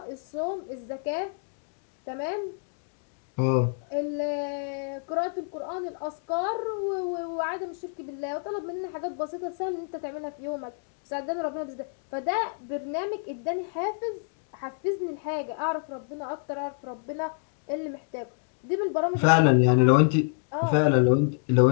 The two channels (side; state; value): right; silent; 59 dB below the other